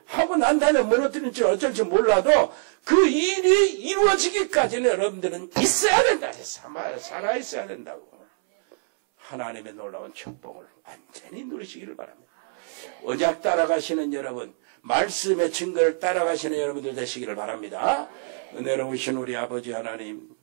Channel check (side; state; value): left; silent; 62 dB below the other